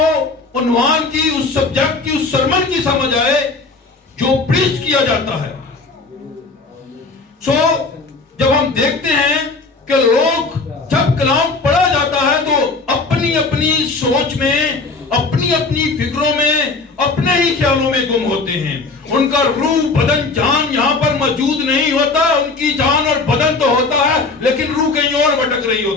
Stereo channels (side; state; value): right; quieter; 3.8 dB